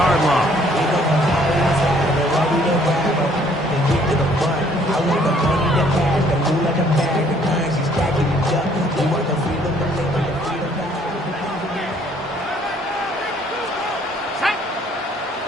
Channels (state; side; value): normal; both; correlation 0.62